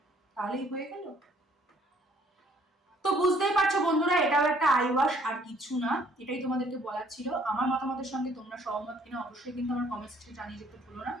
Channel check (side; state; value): both; normal; correlation 0.62